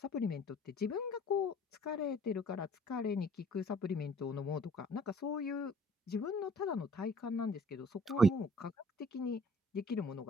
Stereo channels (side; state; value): both; normal; correlation 0.54